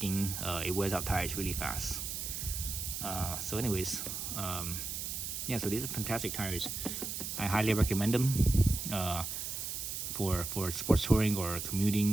it wears out tires really fast. So anyways, yeah, so these are fantastic tires. I highly recommend them for sports touring or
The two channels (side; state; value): right; noise; hiss, 4 dB below the sound